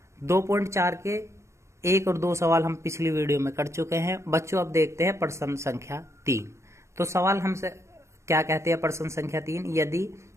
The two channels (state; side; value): late; left; 0.14 ms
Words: 2.4 के एक और दो सवाल हम पिछली वीडियो में कर चुके हैं। बच्चों अब देखते हैं प्रश्न संख्या 3। तो सवाल हमसे क्या कहते हैं प्रश्न संख्या 3, यदि